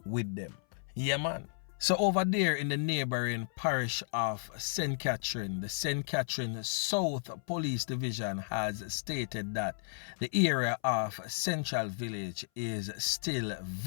with them. Yeah man. So over there in the neighboring parish of St. Catherine, the St. Catherine South Police Division has stated that the area of Central Village is still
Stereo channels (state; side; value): silent; right; 55 dB below the other